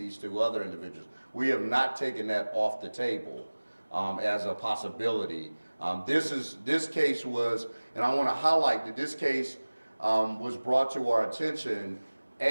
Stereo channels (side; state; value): both; inverted; correlation -1.00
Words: to other individuals. We have not taken that off the table as a possibility. This case was, and I want to highlight that this case was brought to our attention,